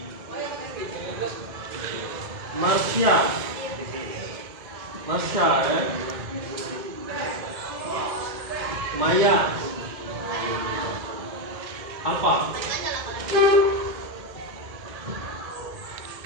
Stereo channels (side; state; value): left; late; 2.1 ms